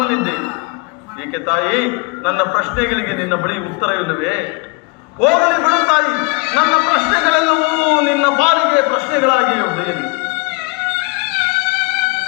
ಏಕೆ ತಾಯಿ? ನನ್ನ ಪ್ರಶ್ನೆಗಳಿಗೆ ನಿನ್ನ ಬಳಿ ಉತ್ತರವಿಲ್ಲವೇ? ಹೋಗಲಿ ಬಿಡು ತಾಯಿ, ನನ್ನ ಪ್ರಶ್ನೆಗಳೆಲ್ಲವೂ ನಿನ್ನ ಪಾಲಿಗೆ ಪ್ರಶ್ನೆಗಳಾಗಿ ಉಳಿಯಲಿ.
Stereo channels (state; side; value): quieter; right; 29.9 dB